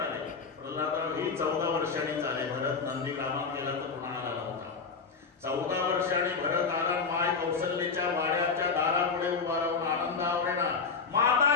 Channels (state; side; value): quieter; right; 5.1 dB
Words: आले. प्रल्हादराव ही 14 वर्षांनी चाले. भरत नंदीग्रामात गेला तर कुणाला नव्हता. 14 वर्षांनी भरत आला. माय कौशल्याच्या वाड्याच्या दारापुढे उभा राहून आनंद आवरेना